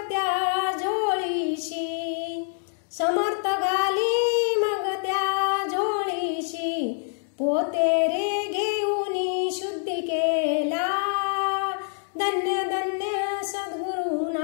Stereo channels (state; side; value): silent; right; 61 dB below the other